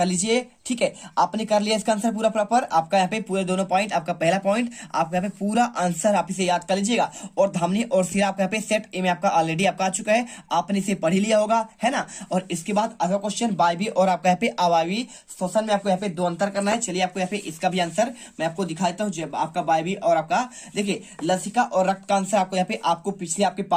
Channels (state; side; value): identical; both; correlation 1.00